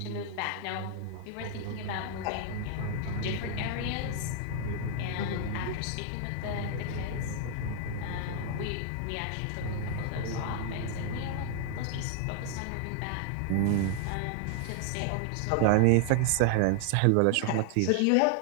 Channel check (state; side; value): different; both; correlation 0.00